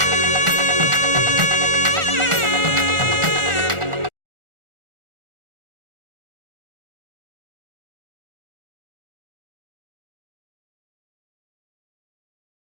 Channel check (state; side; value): late; left; 1.4 ms